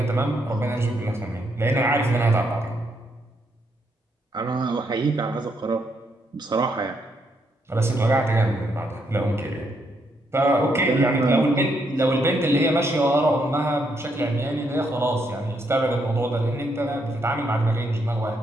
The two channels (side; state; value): both; normal; correlation 0.76